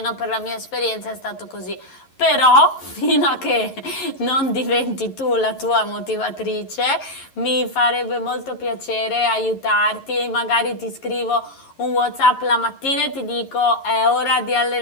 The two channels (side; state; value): right; late; 11 ms